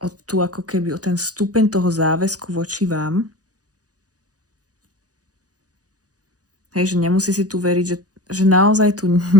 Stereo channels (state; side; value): late; left; 0.67 ms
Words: o ten stupeň toho záväzku voči vám. Hej, že nemusí si tu veriť, že naozaj tu